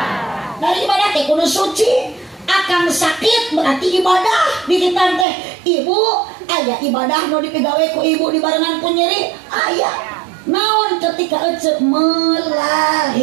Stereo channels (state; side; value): drops out; left; at 5.2 s